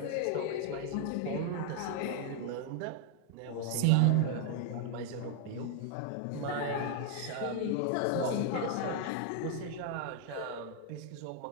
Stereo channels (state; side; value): different; both; correlation 0.00